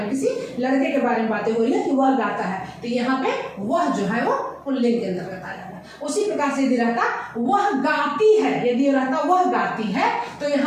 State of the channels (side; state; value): both; identical; correlation 1.00